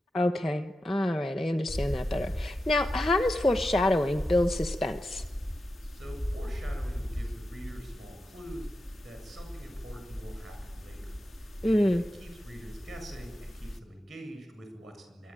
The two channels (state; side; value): normal; both; correlation 0.90